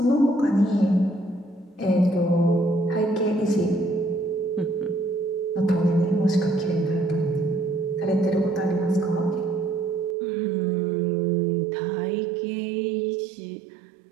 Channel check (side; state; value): left; drops out; at 10.2 s